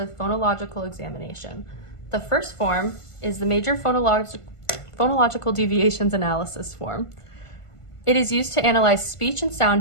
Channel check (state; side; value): late; right; 1.5 ms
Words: Phonological Examination. The first form is the Major Phonological Deviations Analysis form. It is used to analyze speech and sound